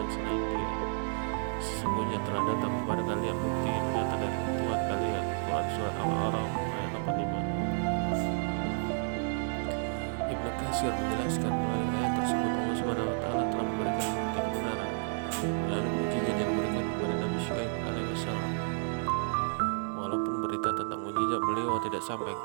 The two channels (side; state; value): left; silent; 57 dB below the other